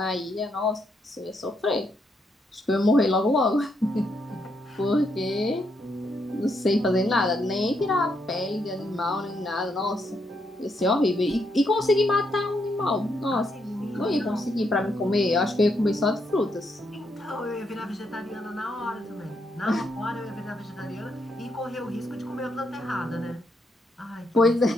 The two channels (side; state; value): both; normal; correlation 0.78